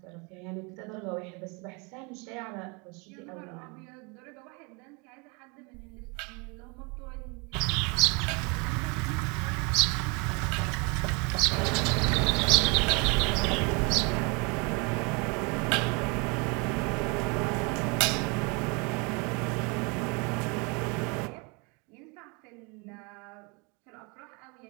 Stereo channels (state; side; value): quieter; left; 30.9 dB